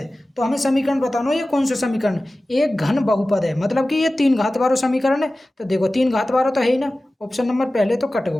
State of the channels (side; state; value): both; normal; correlation 0.96